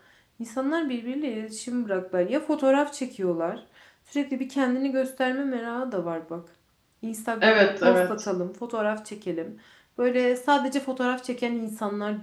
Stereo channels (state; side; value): identical; both; correlation 1.00